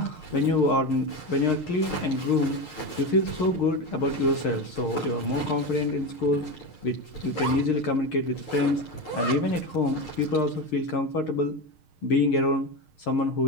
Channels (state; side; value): late; right; 6.5 ms